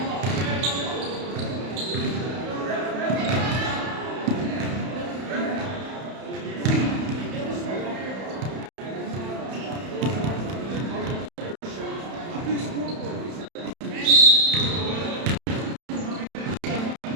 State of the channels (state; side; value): late; left; 31 ms